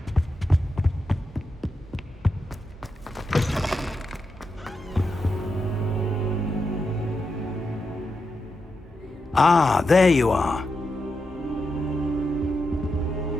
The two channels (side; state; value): both; normal; correlation 0.86